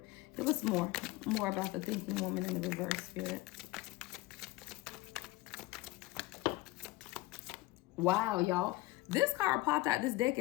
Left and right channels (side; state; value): right; quieter; 19.4 dB